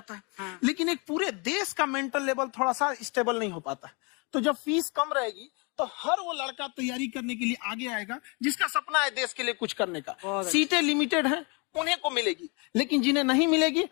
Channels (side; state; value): right; quieter; 32.0 dB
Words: है। लेकिन एक पूरे देश का मेंटल लेवल थोड़ा सा स्टेबल नहीं हो पाता। तो जब फीस कम रहेगी तो हर वो लड़का तैयारी करने के लिए आगे आएगा जिसका सपना है देश के लिए कुछ करने का। सीटें लिमिटेड हैं, उन्हें को मिलेगी, लेकिन जिन्हें नहीं मिलेगी